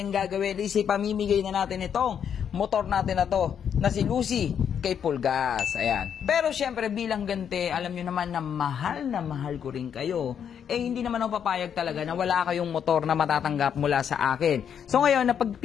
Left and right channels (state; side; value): quieter; right; 8.2 dB